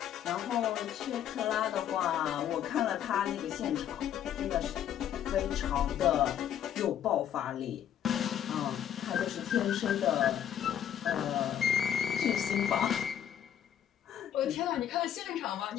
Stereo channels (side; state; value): right; quieter; 10.0 dB